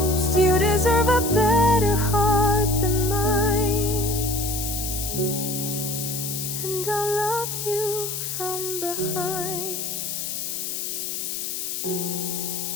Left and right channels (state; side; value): noise; left; hiss, 4 dB below the sound